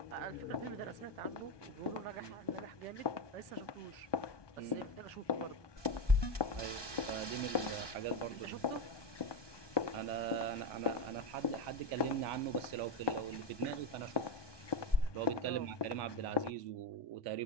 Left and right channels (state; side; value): late; right; 1.2 ms